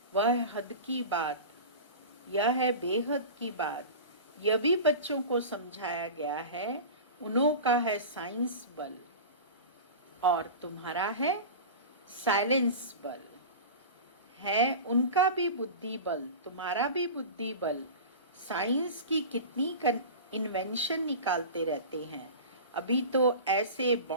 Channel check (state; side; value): inverted; both; correlation -0.32